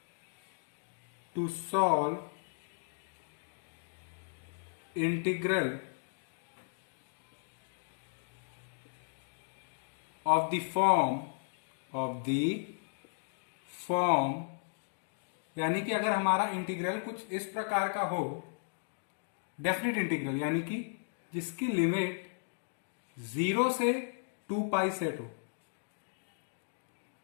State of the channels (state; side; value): silent; right; digital silence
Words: to solve integral of the form यानी कि अगर हमारा इंटीग्रल कुछ इस प्रकार का हो, डेफिनेट इंटीग्रल यानी कि जिसकी लिमिट 0 से 2 पाई सेट हो